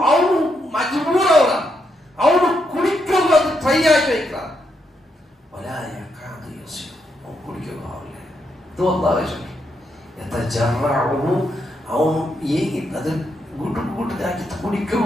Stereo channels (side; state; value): both; normal; correlation 0.80